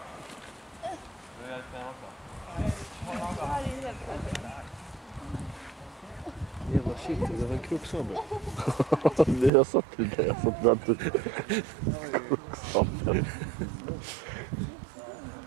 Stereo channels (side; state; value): left; drops out; at 9.5 s